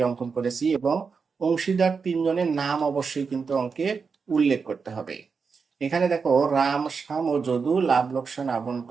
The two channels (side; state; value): left; quieter; 5.3 dB